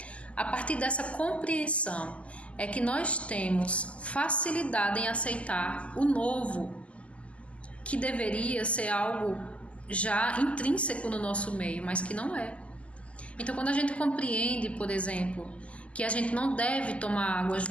A partir dessa compreensão é que nós temos facilidade em aceitar o novo, que deveria ser algo já intrínseco no nosso meio, mas que não é. Então, quando a gente compreende, por exemplo, que a gente não deve tomar água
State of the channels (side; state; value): right; late; 0.062 ms